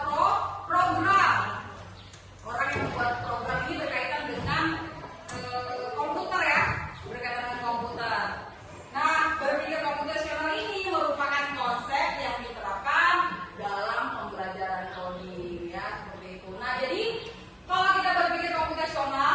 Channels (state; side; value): identical; both; correlation 1.00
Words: program. Orang yang membuat program ini berkaitan dengan komputer ya, berkaitan dengan komputer. Nah, berpikir komputasional ini merupakan konsep yang diterapkan dalam pembelajaran coding ya, seperti itu. Nah, jadi kalau kita berpikir